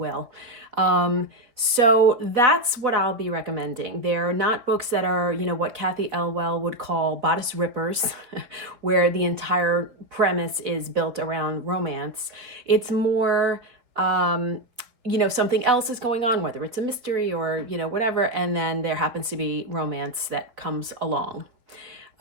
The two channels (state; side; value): late; left; 4.0 ms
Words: So that's what I'll be recommending. They're not books that are, what Kathy Elwell would call bodice rippers, where the entire premise is built around romance. It's more, something else is going on, whether it's a mystery or, whatever, and then there happens to be romance that comes along.